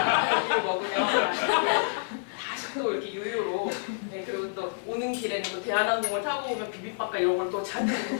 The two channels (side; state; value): right; silent; 58 dB below the other